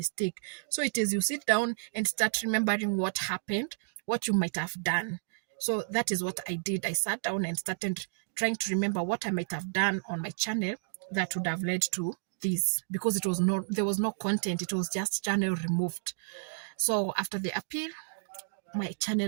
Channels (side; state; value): left; silent; digital silence